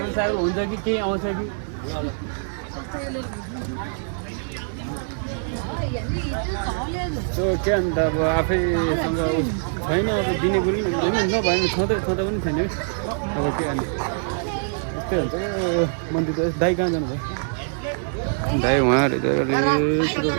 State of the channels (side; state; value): left; silent; digital silence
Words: साइरल हुन्छ कि केही आउँछ कि के अन्त अब आफैसँग छैन अब दिने कुरो पनि नभएन छँदै पनि छैन है अब के अन्त यस्तै हुन्छ मन्दिर त दाइ कहाँ जानुभयो दाइ उहाँहरू